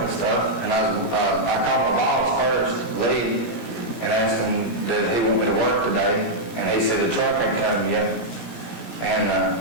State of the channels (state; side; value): late; right; 17 ms